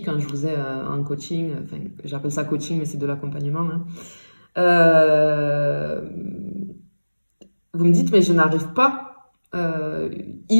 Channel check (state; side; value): inverted; both; correlation -1.00